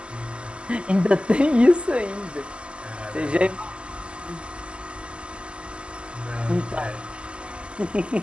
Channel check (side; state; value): left; late; 0.052 ms